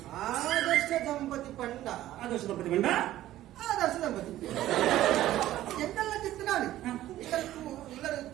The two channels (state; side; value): quieter; left; 14.1 dB